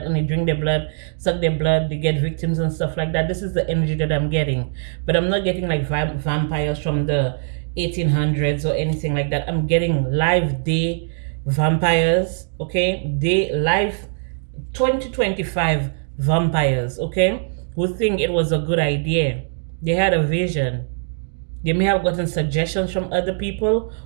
and they drink their blood, suck their blood, they get victims and stuff like that. This is the energy that I'm getting, but I'm not getting like vampires from the 1800s or anything like that. I'm getting live day vampires, okay? Day live 2025 vampires, okay? Who think it was a good idea. They had a vision. They may have gotten suggestions from other people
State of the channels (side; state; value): left; silent; 64 dB below the other